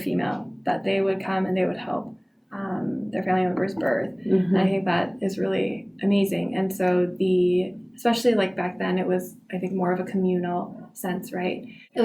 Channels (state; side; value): identical; both; correlation 1.00